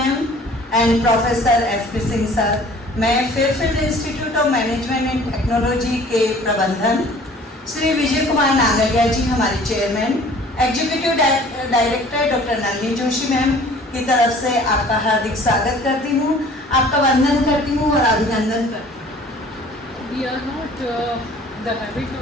and professor SP. Singh sir. मैं Fairfield Institute of Management and Technology के प्रबंधन श्री विजय कुमार नागरिया जी हमारे chairman, executive director doctor Nalini Joshi ma'am की तरफ से आपका हार्दिक स्वागत करती हूँ, आपका वंदन करती हूँ और अभिनंदन करती हूँ। We are not the habit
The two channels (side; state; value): both; normal; correlation 0.50